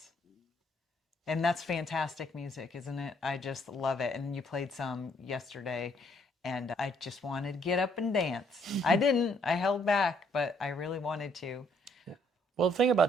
And that's fantastic music, isn't it? I just love it. And you played some yesterday, and I just wanted to get up and dance. I didn't. I held back, but I really wanted to. Well, the thing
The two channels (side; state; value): both; normal; correlation 0.68